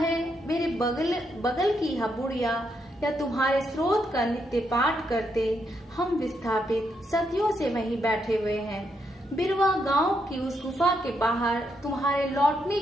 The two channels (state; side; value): normal; both; correlation 0.79